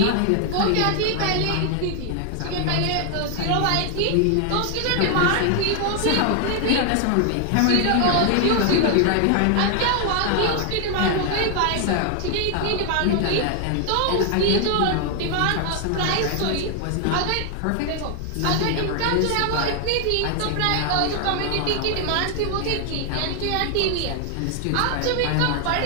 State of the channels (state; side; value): different; both; correlation 0.00